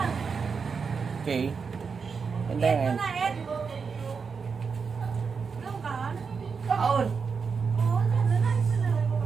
Okay. And then, kaon.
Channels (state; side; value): quieter; left; 5.5 dB